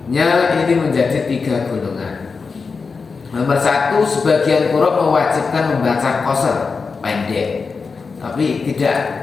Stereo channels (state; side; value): quieter; right; 4.8 dB